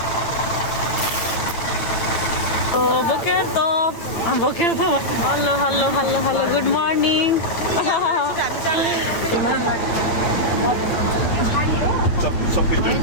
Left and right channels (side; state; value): right; late; 9.2 ms